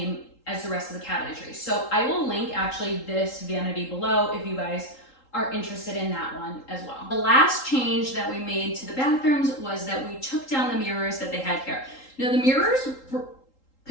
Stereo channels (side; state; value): right; late; 3.8 ms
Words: as the rest of the cabinetry. So I will link actually this vanity below if you guys are interested in that one as well. The last change that we made to the bathrooms was that we took down the mirrors that they had here. Now the mirrors were